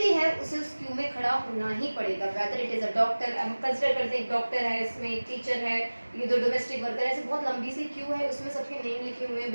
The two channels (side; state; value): both; inverted; correlation -1.00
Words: है उसे उस क्यू में खड़ा होना ही पड़ेगा. Whether it is a doctor, हम कंसिडर करते हैं एक डॉक्टर है, इसमें एक टीचर है, ये दो डोमेस्टिक वर्कर है. ऐसे बहुत लंबी सी क्यू है, उसमें सबके नेम लिखे हुए हैं,